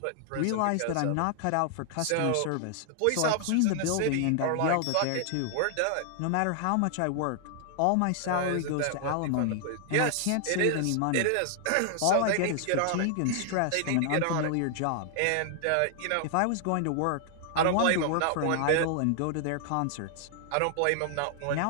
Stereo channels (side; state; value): both; different; correlation 0.00